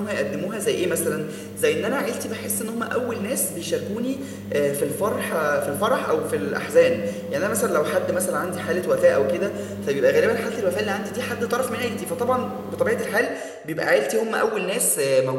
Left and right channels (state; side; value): identical; both; correlation 1.00